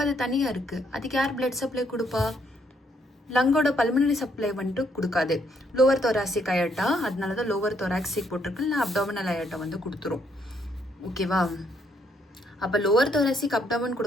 அது தனியாக இருக்குது. அதுக்கு யார் பிளட் சப்ளை கொடுப்பா? லங்கோட பல்மனரி சப்ளை வந்துட்டு கொடுக்காது. லோவர் தொராசிக் அயட்டா, அதனால தான் லோவர் தொராக்சிக் போட்டிருக்கு. இல்லை அப்டாமினல் அயட்டா வந்து கொடுத்துரும். ஓகேவா? அப்போ லோவர் தொராசிக் அப்டாமன்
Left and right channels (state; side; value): normal; both; correlation 0.71